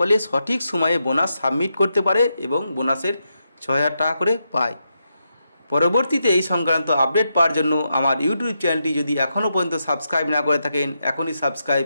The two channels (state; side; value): inverted; both; correlation -0.84